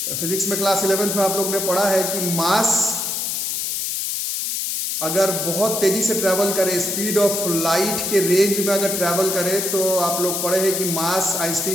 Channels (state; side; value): noise; left; hiss, 1 dB below the sound